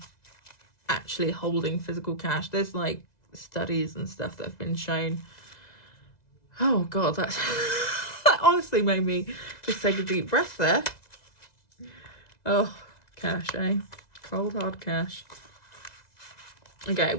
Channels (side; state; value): right; late; 2.0 ms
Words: actually holding physical cash. There's like studies and stuff that have been shown. Oh God, that honestly made me just take a deep breath there. Oh, cash, eh? Cold hard cash. Okay,